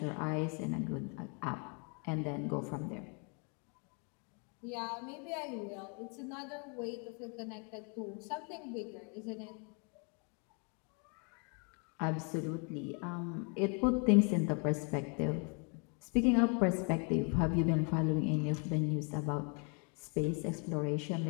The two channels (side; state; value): right; quieter; 36.6 dB